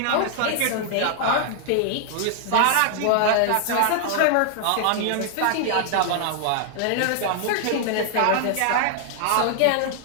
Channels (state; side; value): different; both; correlation 0.00